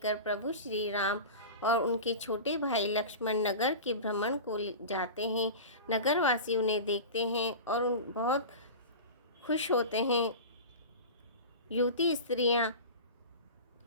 प्रभु श्री राम और उनके छोटे भाई लक्ष्मण नगर के भ्रमण को जाते हैं। नगरवासी उन्हें देखते हैं और बहुत खुश होते हैं। युवती स्त्रियां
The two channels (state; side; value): inverted; both; correlation -0.31